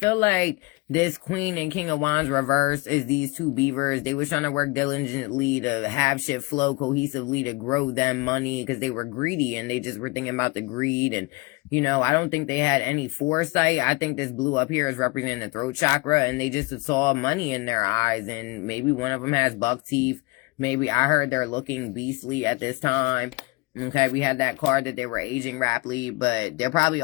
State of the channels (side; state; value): right; quieter; 24.8 dB